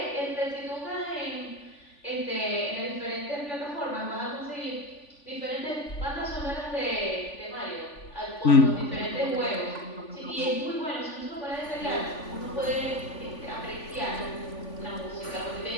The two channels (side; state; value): right; late; 3.5 ms